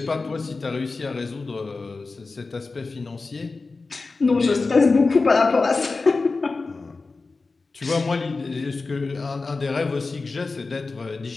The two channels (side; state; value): right; quieter; 3.9 dB